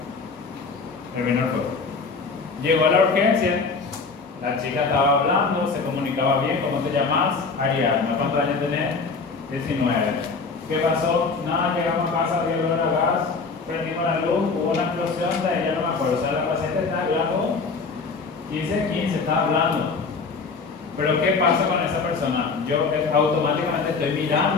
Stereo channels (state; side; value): quieter; right; 4.5 dB